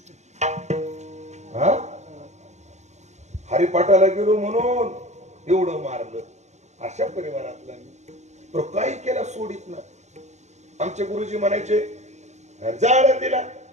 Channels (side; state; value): left; late; 0.33 ms